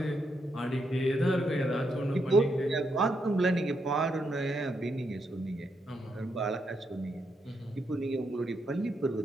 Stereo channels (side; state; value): both; normal; correlation 0.80